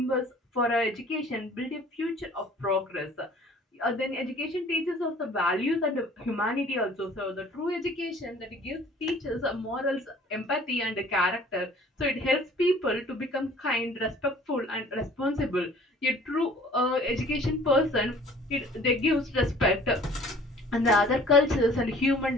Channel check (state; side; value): normal; both; correlation 0.51